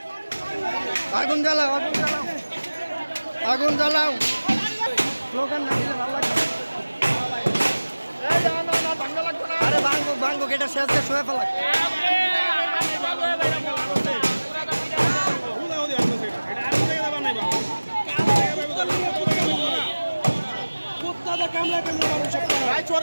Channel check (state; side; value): inverted; both; correlation -1.00